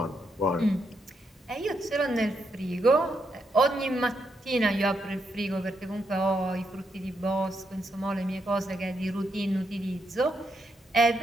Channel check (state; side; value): normal; both; correlation 0.80